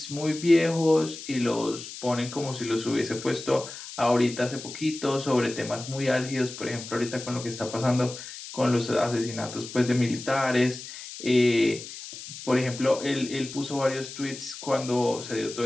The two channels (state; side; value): noise; left; hiss, 12 dB below the sound